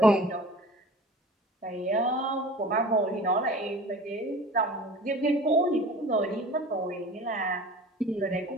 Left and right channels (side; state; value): both; normal; correlation 0.41